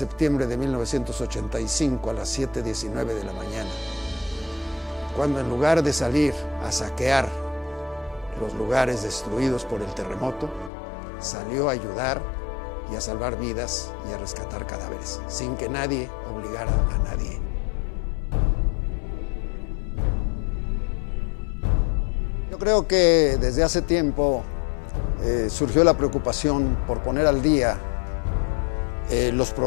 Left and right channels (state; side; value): drops out; right; at 10.7 s